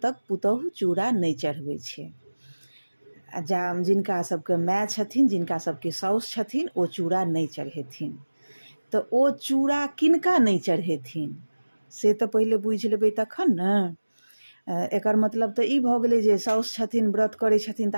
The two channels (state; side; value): inverted; both; correlation -1.00